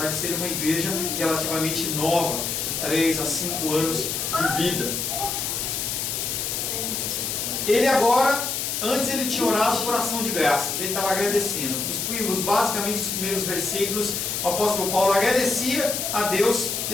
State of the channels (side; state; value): left; noise; hiss, 2 dB below the sound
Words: de ser uma igreja relativamente nova, de 3 a 5 anos de vida. Ele agora, antes ele tinha orado por ação de graças, ele estava agradecendo. Basicamente os primeiros versículos, o apóstolo Paulo agradecia a Deus